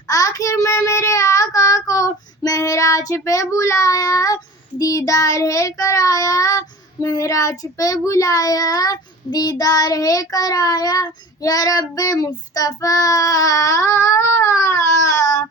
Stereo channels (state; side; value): normal; both; correlation 0.39